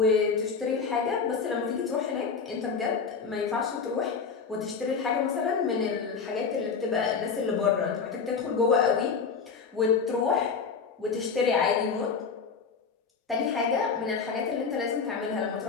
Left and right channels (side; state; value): right; quieter; 5.4 dB